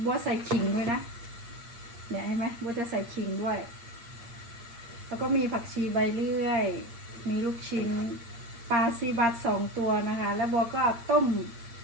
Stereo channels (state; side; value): late; left; 8.6 ms